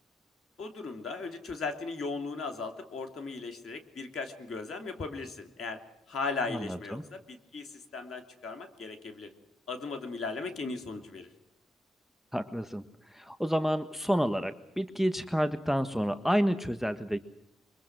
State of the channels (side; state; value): both; normal; correlation 0.86